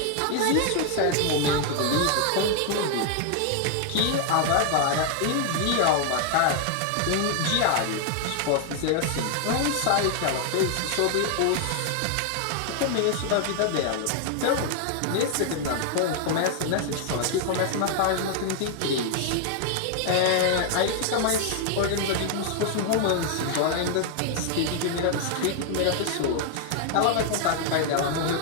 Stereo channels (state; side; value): different; both; correlation 0.00